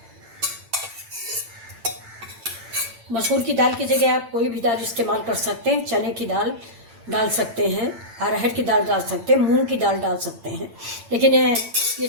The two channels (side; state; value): left; late; 8.9 ms